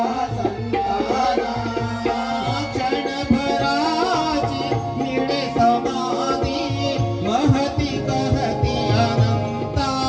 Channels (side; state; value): both; identical; correlation 1.00